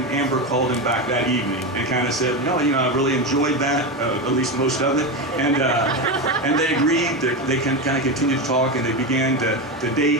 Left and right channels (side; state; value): both; normal; correlation 0.16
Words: Amber called him back that evening and kind of said, no, you know, I really enjoyed that, at least most of it, and they agreed. They kind of continued to talk, and they began to date